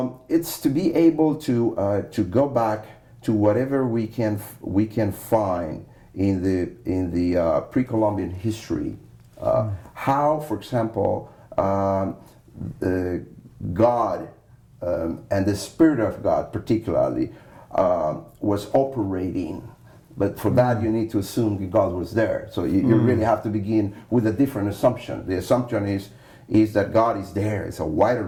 it's to be able to go back to whatever we can find in the pre-Columbian history. How, for example, God and the Spirit of God particularly was operating. But for that, you need to assume that God was there. So you really have to begin with a different assumption. The assumption is that God is there. It's a wider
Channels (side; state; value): both; identical; correlation 1.00